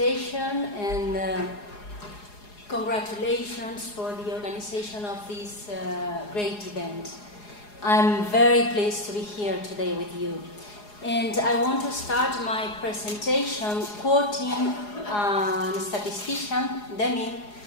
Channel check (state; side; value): late; right; 4.8 ms